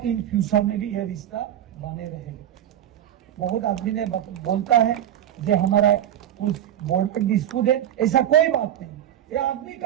फ्यूचर में भी यह रिश्ता बने रहेगा। बहुत आदमी ने बोलता है जो हमारा कुछ बोर्ड पर डिस्प्यूट है, ऐसा कोई बात नहीं, ये आदमी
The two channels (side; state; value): left; quieter; 11.1 dB